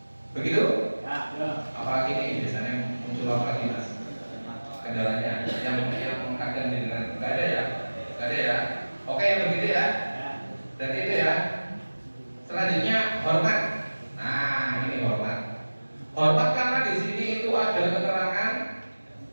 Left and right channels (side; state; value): both; inverted; correlation -1.00